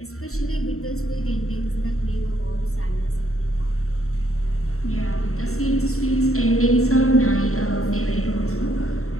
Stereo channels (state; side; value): late; right; 0.63 ms